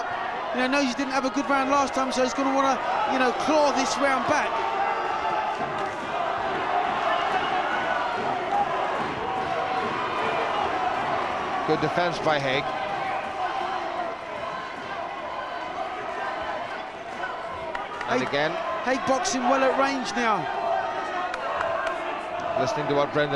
You know, knows he didn't have a good round last time, so he's going to want to, you know, claw this round back. Good defense by Hague. And again, Hague boxing well at range now. Listening to what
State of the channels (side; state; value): both; identical; correlation 1.00